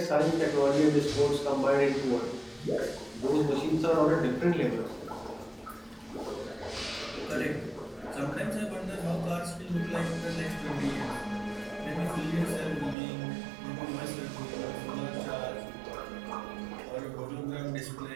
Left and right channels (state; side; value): drops out; left; at 13.0 s